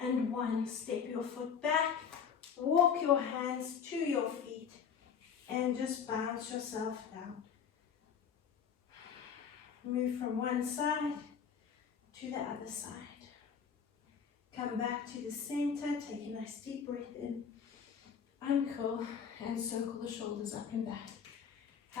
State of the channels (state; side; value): quieter; right; 7.2 dB